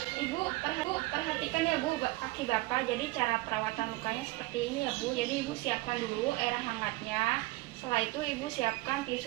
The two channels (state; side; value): quieter; left; 20.8 dB